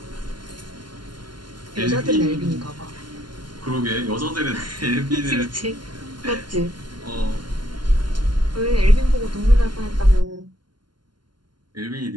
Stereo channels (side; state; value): left; late; 0.71 ms